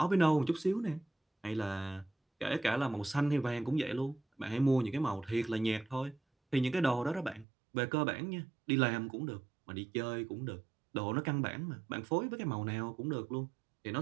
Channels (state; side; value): drops out; left; at 7.5 s